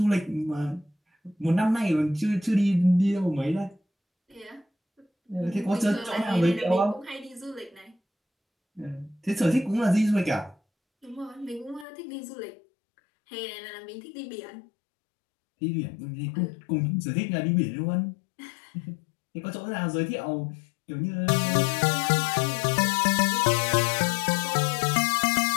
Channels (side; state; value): right; drops out; at 11.9 s